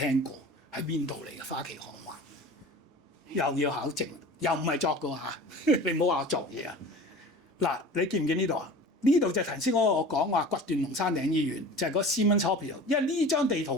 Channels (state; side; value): normal; both; correlation 0.39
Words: 過，喺邊度嚟嘅花旗行灣？又要考證，又唔係作嘅嚇，你唔好話我作嘢啊！嗱，你見唔見呢度啊？呢度就係頭先我講話掘斷龍山頂醫院，就係嗰 Siemens Hospital。因為呢張地圖